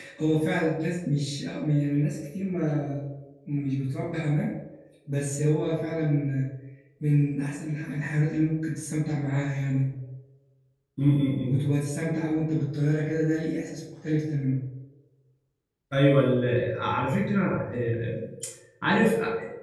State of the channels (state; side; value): identical; both; correlation 1.00